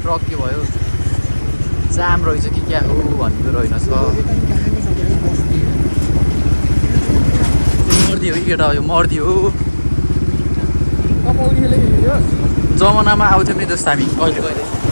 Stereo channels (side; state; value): both; inverted; correlation -1.00